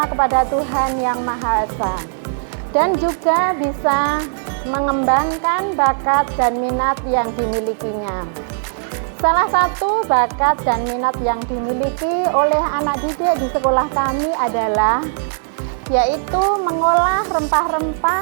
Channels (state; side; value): silent; left; digital silence